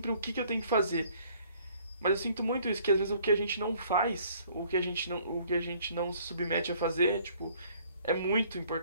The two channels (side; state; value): both; inverted; correlation -0.59